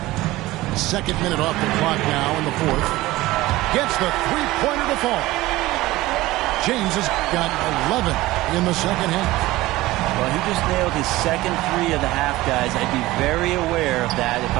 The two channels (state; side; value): quieter; left; 18.1 dB